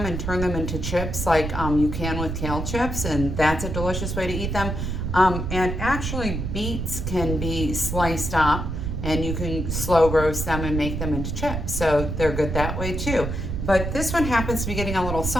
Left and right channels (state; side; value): noise; right; rumble, 3 dB below the sound